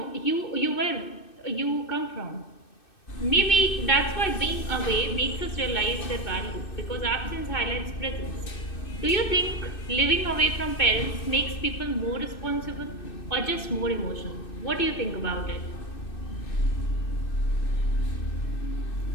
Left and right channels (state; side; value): late; right; 2.6 ms